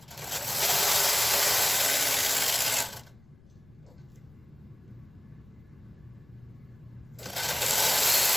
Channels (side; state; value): left; noise; rumble, 27 dB below the sound